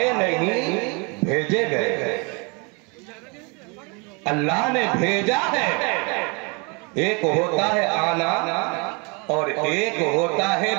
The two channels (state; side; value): quieter; left; 31.6 dB